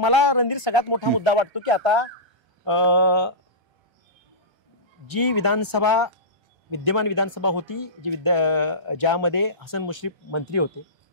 रणधीर सगळ्यात मोठा मुद्दा वाटतो की आता जी विद्यमान विधानसभा होती ज्यामध्ये हसन मुश्रीफ मंत्री होते,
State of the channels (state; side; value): late; left; 1.3 ms